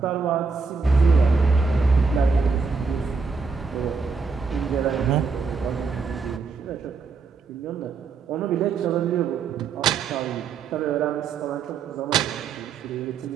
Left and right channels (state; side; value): quieter; left; 4.8 dB